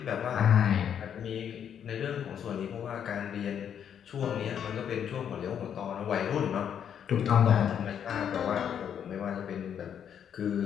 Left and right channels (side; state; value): right; quieter; 8.6 dB